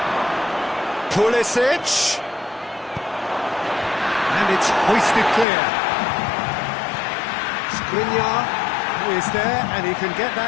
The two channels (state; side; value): drops out; right; at 5.5 s